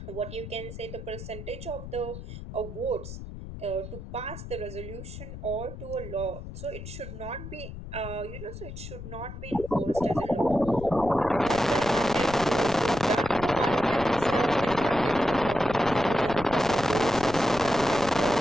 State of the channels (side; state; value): left; noise; rumble, 11 dB below the sound